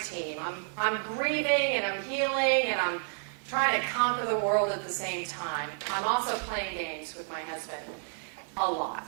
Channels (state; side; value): silent; left; 57 dB below the other